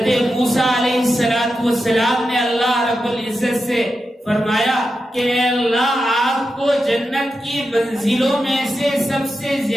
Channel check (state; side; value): normal; both; correlation 0.89